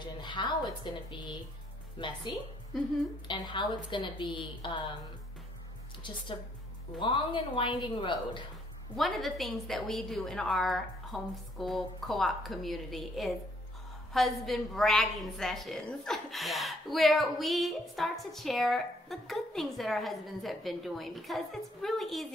and how it's going to be messy and how it's going to be just a long and winding road. One of the things that we do in our homeschool co-op community is husband bragging sessions, where we start to share the good things that our husbands have been doing, because it's really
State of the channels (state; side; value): normal; both; correlation 0.67